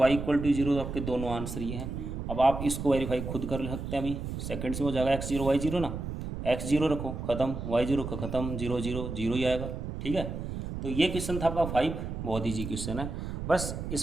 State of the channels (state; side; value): noise; right; rumble, 6 dB below the sound